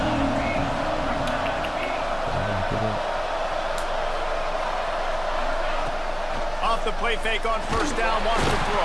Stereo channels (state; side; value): identical; both; correlation 1.00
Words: Off the play fake on first down, wants to